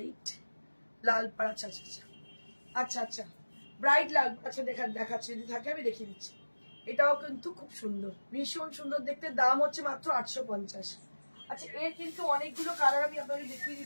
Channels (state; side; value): inverted; both; correlation -1.00